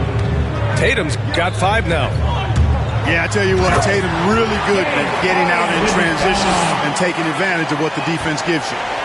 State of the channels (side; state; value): both; identical; correlation 1.00